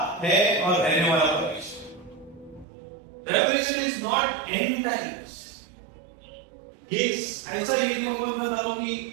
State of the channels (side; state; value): left; drops out; at 2.7 s